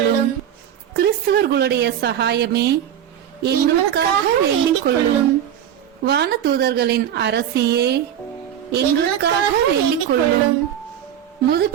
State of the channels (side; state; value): left; quieter; 9.9 dB